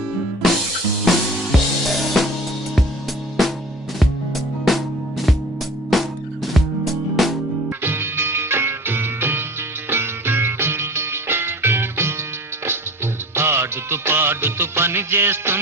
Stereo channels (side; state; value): both; normal; correlation 0.41